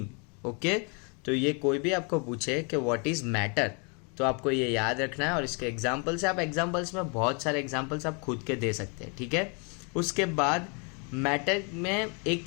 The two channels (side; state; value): right; quieter; 35.5 dB